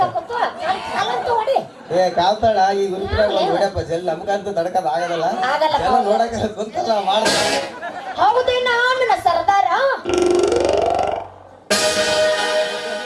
ಏ ಕಾಲ್ತಾಳ ಈ ಗುರುಪಿನಾಗ ಹೊಡ್ಯಪ್ಪ ಜಲ್ ನಮ್ಗಂತೂ ತಡ್ಕದ ಆಗದಲ್ಲ. ಎಲ್ಲ ನೋಡಕ ಕುಂತಲ್ಲ ಮಾಡ. ಹೌದೇನ ನನ್ನ ಸರ್ದಾರ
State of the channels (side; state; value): both; identical; correlation 1.00